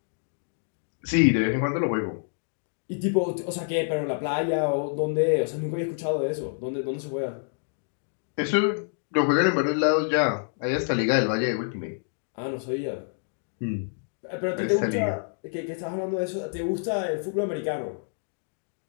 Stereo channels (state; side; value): silent; right; digital silence